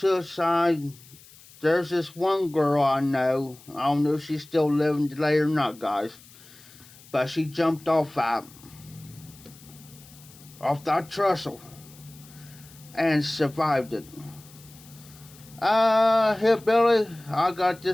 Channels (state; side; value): noise; left; hiss, 23 dB below the sound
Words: There's this one girl I know. I don't know if she's still living today or not, guys. But she jumped off that trestle. and survived it. Hillbilly, I got